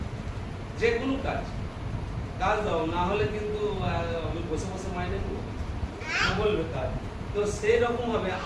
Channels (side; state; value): both; identical; correlation 1.00